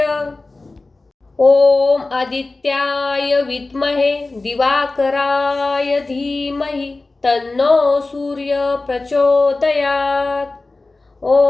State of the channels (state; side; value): quieter; right; 3.3 dB